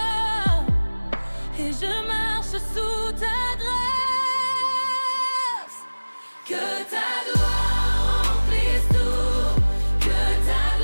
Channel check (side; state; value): both; inverted; correlation -1.00